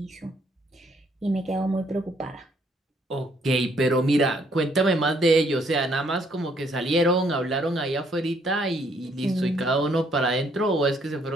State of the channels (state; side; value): normal; both; correlation 0.68